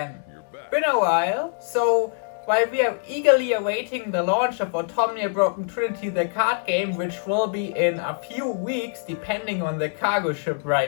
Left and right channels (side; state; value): right; silent; digital silence